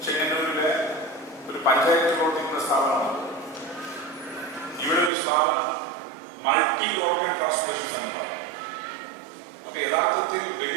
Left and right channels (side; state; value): left; drops out; at 5.1 s